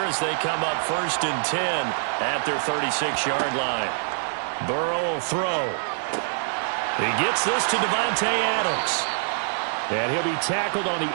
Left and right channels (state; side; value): silent; left; digital silence